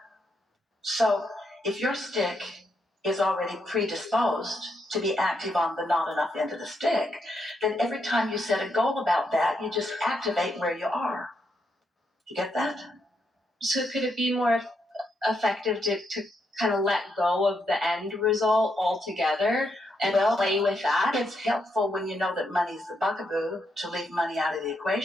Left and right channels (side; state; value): both; normal; correlation 0.80